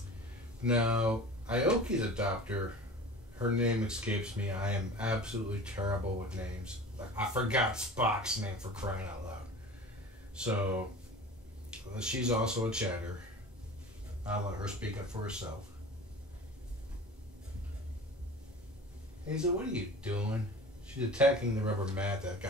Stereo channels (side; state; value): both; normal; correlation 0.38